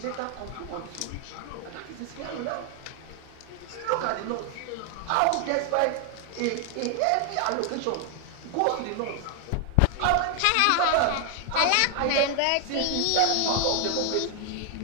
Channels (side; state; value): both; different; correlation 0.00